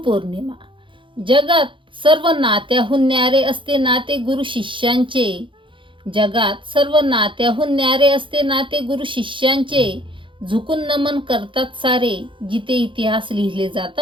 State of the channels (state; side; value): late; left; 0.24 ms